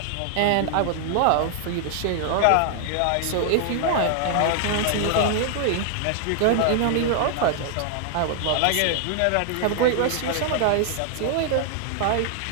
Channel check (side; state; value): both; different; correlation 0.00